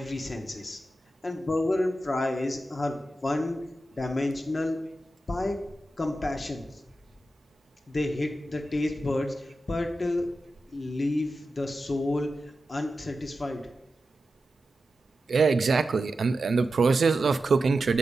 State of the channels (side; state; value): both; normal; correlation 0.91